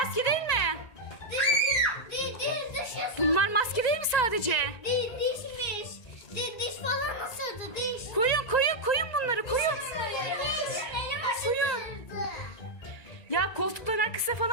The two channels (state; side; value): late; right; 1.8 ms